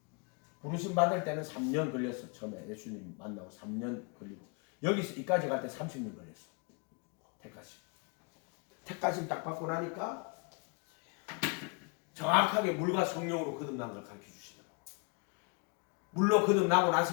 부르심 받을 때는 3년 걸렸어. 처음에 예수님 만나고 3년 걸리고 여기서 이까지 갈 때 30년 걸렸어. 택하심. 택하심 딱 받고 나니까 정확하게 물과 성령으로 거듭난 걸 가르쳐 주시더라고. 물로 거듭나고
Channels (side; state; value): right; quieter; 33.6 dB